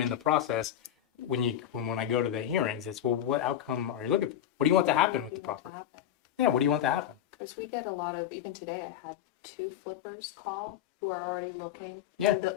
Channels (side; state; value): right; quieter; 10.7 dB